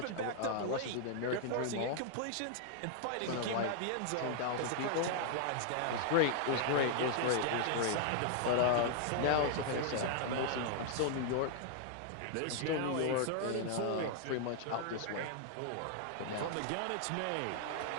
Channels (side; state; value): both; different; correlation 0.00